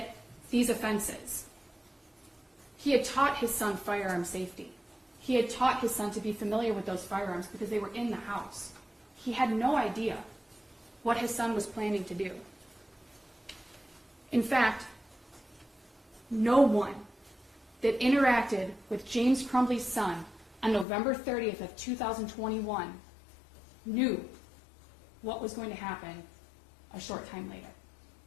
these offenses. He had taught his son firearm safety. He had taught his son to be familiar with those firearms because they were in the house. He had no idea what his son was planning to do. In fact, no one that interacted with James Crumbley's son on November 30th of 2021 knew what was going to happen a short time later.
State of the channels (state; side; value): drops out; right; at 20.9 s